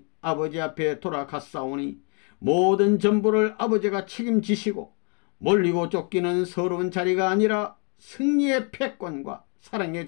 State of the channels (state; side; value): quieter; right; 36.9 dB